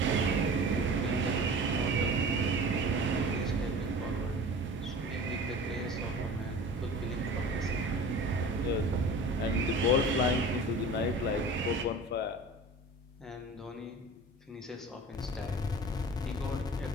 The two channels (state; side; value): normal; both; correlation 0.39